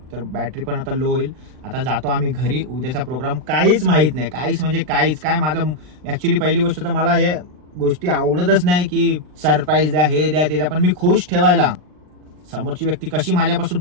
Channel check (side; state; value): left; late; 39 ms